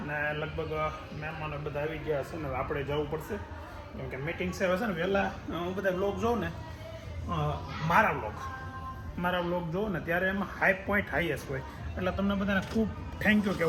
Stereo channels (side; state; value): both; identical; correlation 1.00